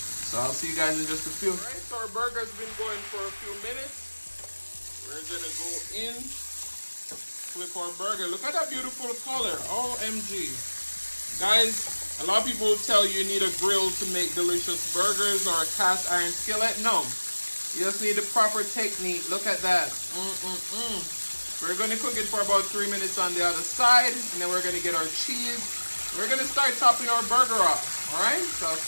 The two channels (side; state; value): both; inverted; correlation -1.00